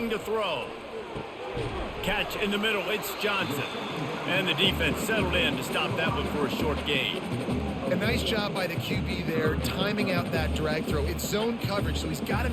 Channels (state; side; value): identical; both; correlation 1.00